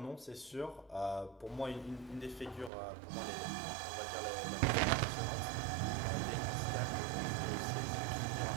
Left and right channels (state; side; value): drops out; left; at 2.7 s